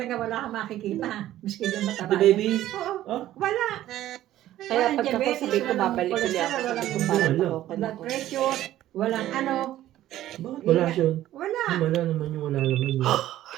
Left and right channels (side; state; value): left; quieter; 13.6 dB